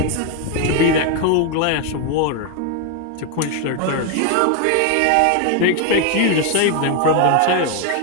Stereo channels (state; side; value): different; both; correlation 0.01